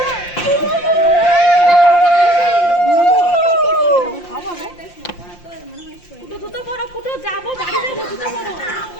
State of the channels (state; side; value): late; right; 5.7 ms